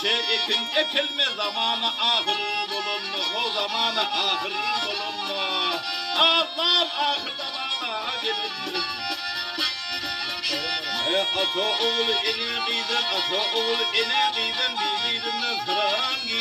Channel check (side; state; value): both; identical; correlation 1.00